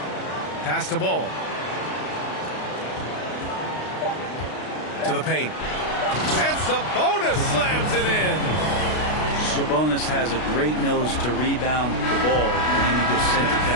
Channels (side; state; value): right; late; 33 ms